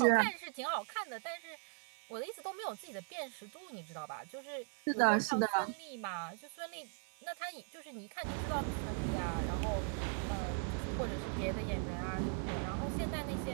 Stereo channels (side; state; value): left; silent; 52 dB below the other